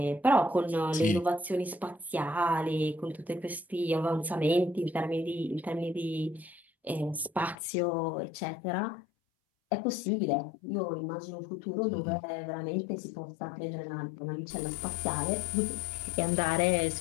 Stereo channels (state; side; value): drops out; right; at 7.6 s